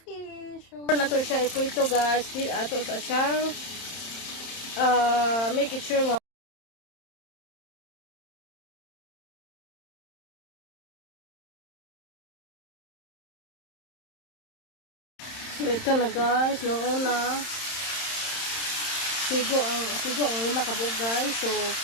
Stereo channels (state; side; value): late; right; 31 ms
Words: So nato siya iprito guys, dito ato sa siyang make it sure nga so ito na guys, noong una sigo ang lima kabuok guys. So